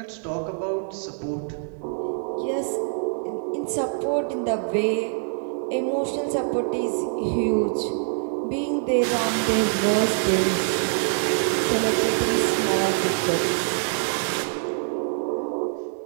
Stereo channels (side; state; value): left; silent; digital silence